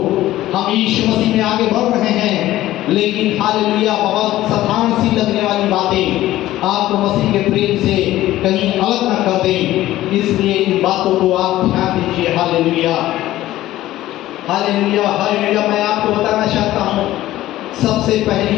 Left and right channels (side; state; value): right; quieter; 15.0 dB